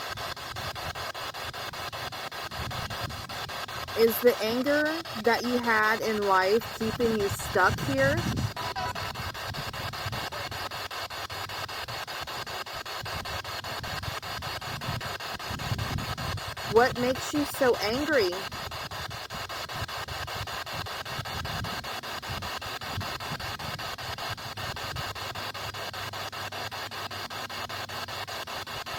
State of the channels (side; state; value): both; identical; correlation 1.00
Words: Is the anger that you had in life keeping you stuck here? What makes you so angry?